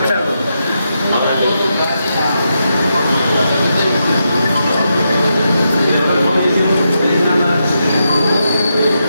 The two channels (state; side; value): inverted; both; correlation -0.84